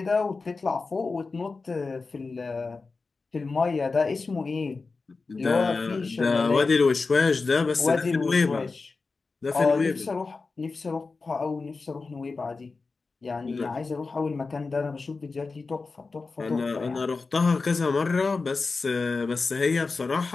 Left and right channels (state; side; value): quieter; right; 4.1 dB